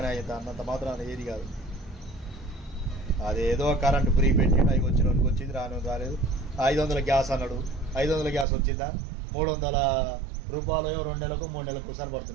అవుతుంది. అన్నంత మాత్రం ఏది కాదు. అదేదో కరెంటు ఫ్రీ పెట్టిండు, అవి వచ్చినోనికి వచ్చింది, రాలేదు. 500 గ్యాస్ అన్నాడు, 500 గ్యాస్ వచ్చిందా? 300 రూపాయలు 2 నెలలకు 3 నెలలకు ఒకసారి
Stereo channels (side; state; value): left; drops out; at 8.5 s